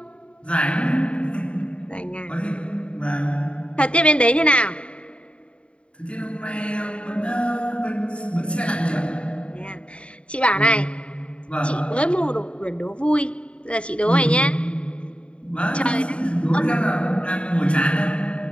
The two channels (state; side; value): late; right; 0.058 ms